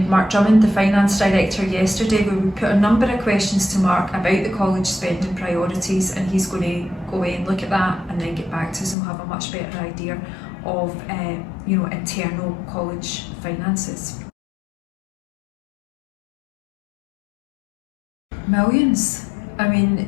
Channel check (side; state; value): right; drops out; at 9.0 s